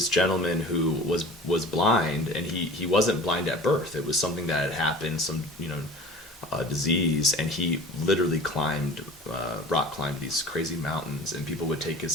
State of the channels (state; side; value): normal; both; correlation 0.41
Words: gentleman who was blind, and he wasn't blind at birth. It was something that had happened, some disease, and he literally rock climbed these crazy mountains, and people would take